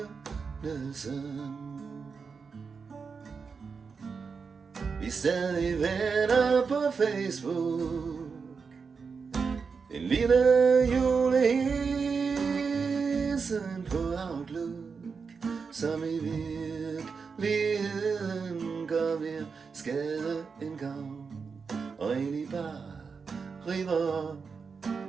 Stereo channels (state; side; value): quieter; left; 5.3 dB